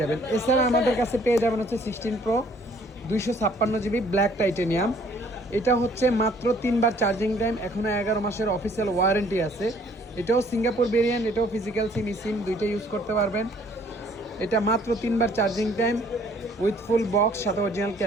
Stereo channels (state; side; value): normal; both; correlation 0.59